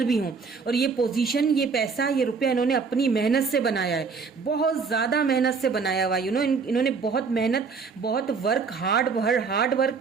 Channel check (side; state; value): left; quieter; 5.1 dB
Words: भी हों, और ये पोजीशन, ये पैसा, ये रुपया इन्होंने अपनी मेहनत से बनाया है, बहुत ज़्यादा मेहनत से बनाया हुआ। इन्होंने बहुत मेहनत, बहुत हार्ड वर्क